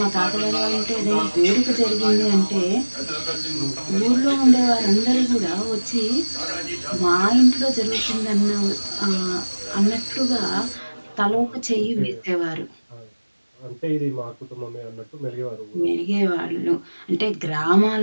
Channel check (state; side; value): inverted; both; correlation -1.00